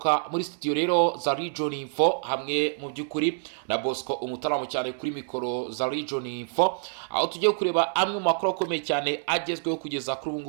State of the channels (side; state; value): left; silent; digital silence